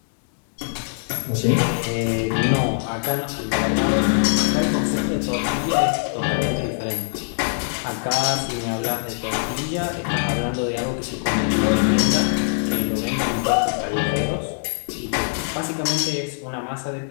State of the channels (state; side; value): silent; right; 64 dB below the other